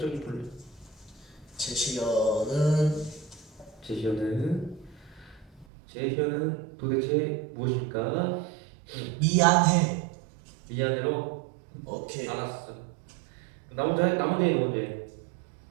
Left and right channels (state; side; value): drops out; left; at 5.7 s